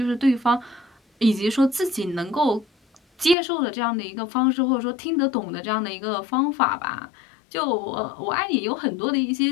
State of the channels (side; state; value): right; drops out; at 3.4 s